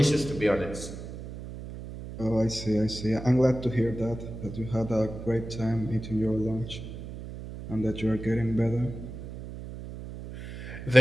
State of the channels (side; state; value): right; noise; hum, 10 dB below the sound